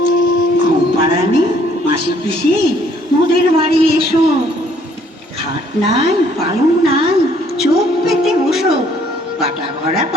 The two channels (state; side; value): normal; both; correlation 0.63